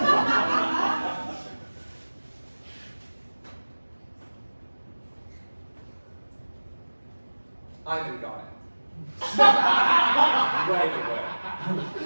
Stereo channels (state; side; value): inverted; both; correlation -1.00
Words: Ivan got it. Right away.